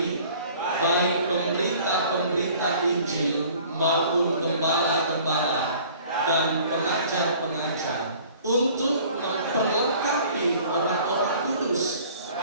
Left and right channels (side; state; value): both; inverted; correlation -0.51